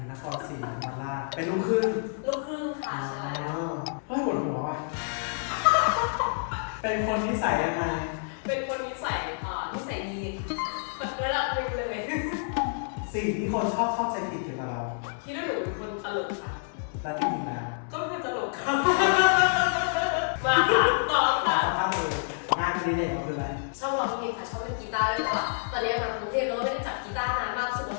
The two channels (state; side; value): silent; right; 59 dB below the other